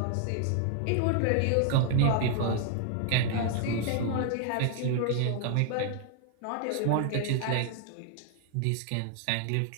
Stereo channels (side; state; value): both; different; correlation 0.00